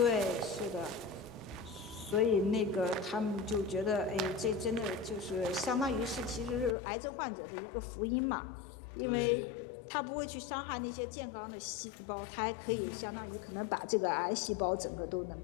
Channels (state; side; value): drops out; right; at 6.8 s